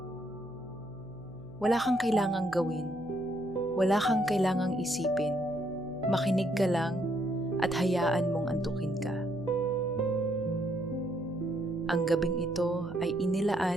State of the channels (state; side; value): noise; left; hum, 17 dB below the sound